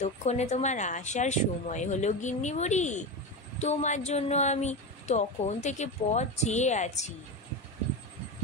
তোমার আসার সময় হলো গিন্নি বুড়ি, তোমার জন্য আমি তখন থেকে পথ চেয়ে আছি।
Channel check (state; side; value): normal; both; correlation 0.19